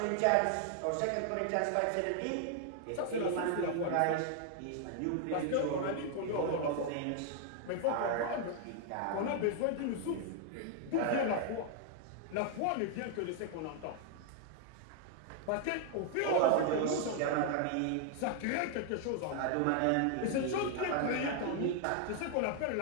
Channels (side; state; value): both; different; correlation 0.00